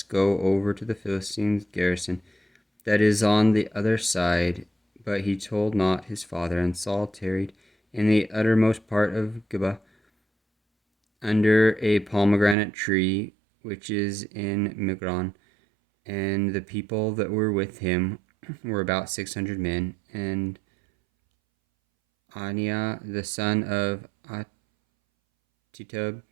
go over to the Philistines' garrison that is on the other side. But he told not his father, and Saul tarried in the uttermost part of Gibeah, under a pomegranate tree which is in Migron. And the people that were with him were about 600 men, and Aniah the son of Ahitub,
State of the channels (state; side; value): drops out; left; at 12.6 s